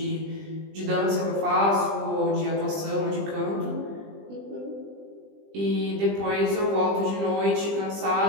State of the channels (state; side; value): late; left; 20 ms